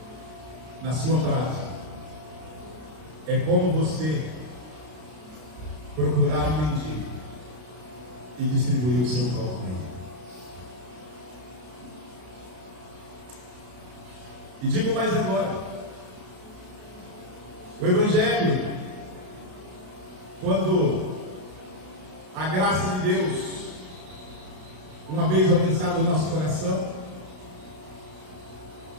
na sua prática, é como você procurar um mendigo e distribuir o seu pão com ele. E digo mais agora, o Evangelho, quando a graça de Deus, uma vez alcançada no nosso coração,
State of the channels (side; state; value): left; late; 32 ms